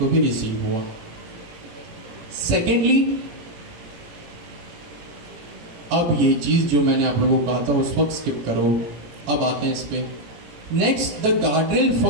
भी रिसीव हुआ। सेकेंडली, अब ये चीज जो मैंने आप लोगों को कहा था उस वक्त स्किप करो, अब आते हैं इस पे। Next, the guardrail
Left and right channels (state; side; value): late; left; 18 ms